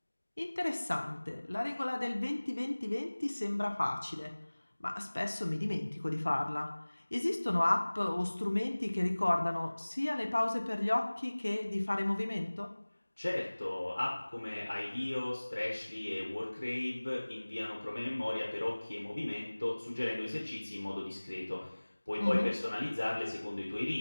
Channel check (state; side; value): inverted; both; correlation -1.00